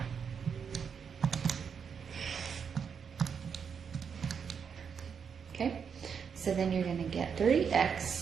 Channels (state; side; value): quieter; left; 6.7 dB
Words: Okay, so then you're going to get